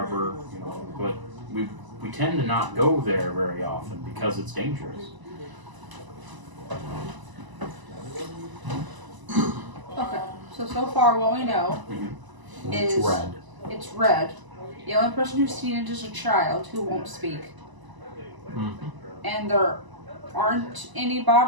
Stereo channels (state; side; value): late; left; 1.0 ms